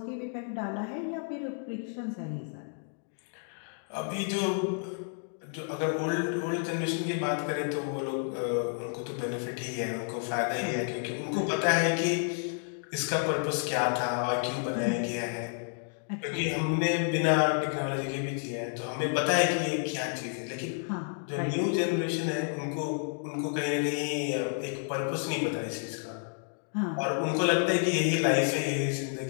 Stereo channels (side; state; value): right; silent; 57 dB below the other